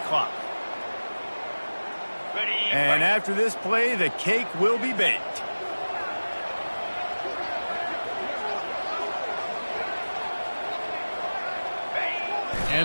And after this play, the cake will be baked.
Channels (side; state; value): both; inverted; correlation -1.00